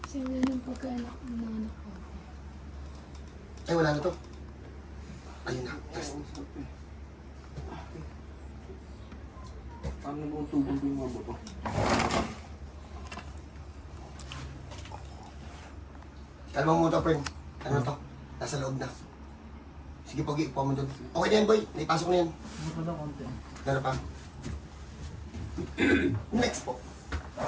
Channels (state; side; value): identical; both; correlation 1.00